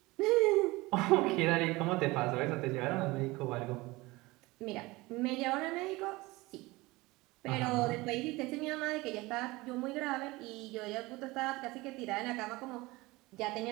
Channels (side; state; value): left; quieter; 21.5 dB